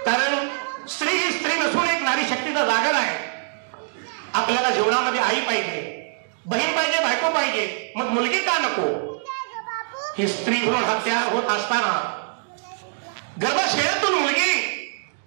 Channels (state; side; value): silent; left; digital silence